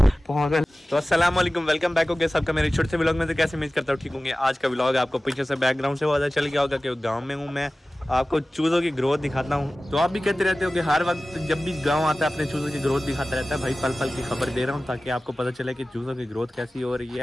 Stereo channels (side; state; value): both; normal; correlation 0.97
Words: पागल। तो अस्सलाम वालेकुम, वेलकम बैक हो गया सबका मेरे छोटे से व्लॉग में। तो कैसे उम्मीद करता हूँ ठीक होंगे। आज का व्लॉग आपको पीछे से बैकग्राउंड से पता चल गया होगा कि गांव में हूँ मैं। आपको चूज़ों की ग्रोथ दिखाता हूँ। तो आप भी कहते रहते हो कि हर वक्त जब भी गांव आता है अपने चूज़ों की ग्रोथ दिखाता रहता है। भाई पल पल की खबर दे रहा हूँ ताकि आपको पता चले कि चूज़ों की ग्रोथ कैसी हो रही